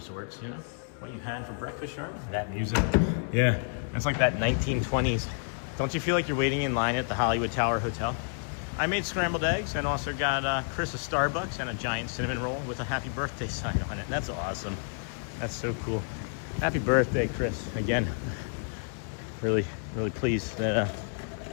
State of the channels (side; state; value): right; silent; 58 dB below the other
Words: you know? What you had for breakfast, Sharon? That music. Yeah, it's like that 1920s. Don't you feel like you're waiting in line at the Hollywood Tower Hotel? I made scrambled eggs and also got Chris a Starbucks and a giant cinnamon roll with a happy birthday sign on it. That's awesome. That's so cool. Happy birthday, Chris. Again, really, really pleased that